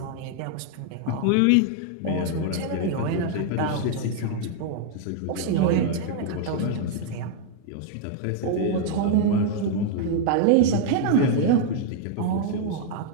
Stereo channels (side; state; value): both; different; correlation 0.00